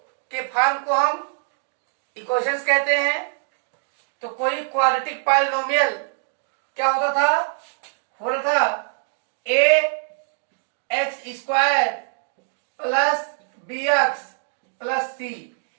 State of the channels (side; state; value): left; silent; 63 dB below the other